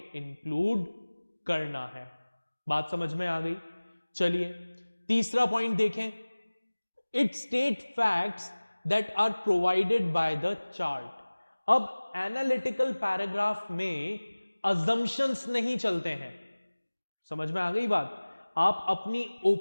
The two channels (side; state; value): both; inverted; correlation -1.00